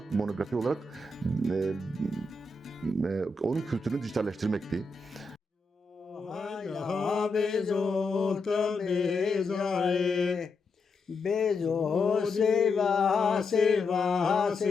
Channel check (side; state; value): right; quieter; 3.4 dB